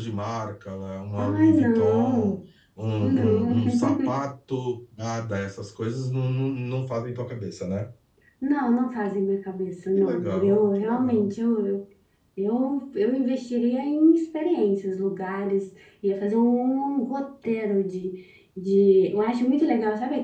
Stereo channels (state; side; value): identical; both; correlation 1.00